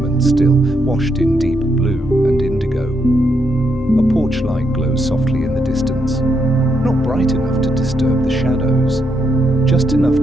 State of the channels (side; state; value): both; normal; correlation 0.79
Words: and still, washed in deep blue and indigo. A porch light glows softly in the distance, not bright enough to disturb the shadows, just enough